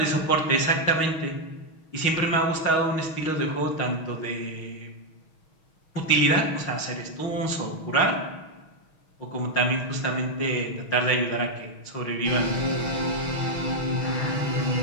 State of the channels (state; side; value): late; right; 6.3 ms